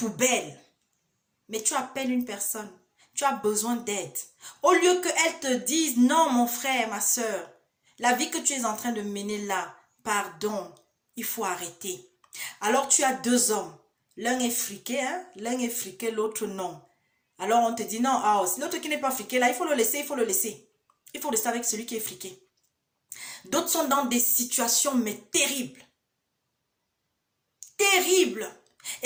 mais tu appelles une personne, tu as besoin d'aide. Au lieu qu'elle te dise, non mon frère, ma sœur, la vie que tu es en train de mener là, pardon, il faut arrêter. Alors tu as 2 hommes, l'un est friqué, hein? L'un est friqué, l'autre non. Alors on te dit non, l'autre qui n'est pas friqué là, il faut le laisser, il faut le laisser. Il faut rester avec celui qui est friqué. D'autres sont dans des situations mais terribles. Terribles.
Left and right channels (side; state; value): both; identical; correlation 1.00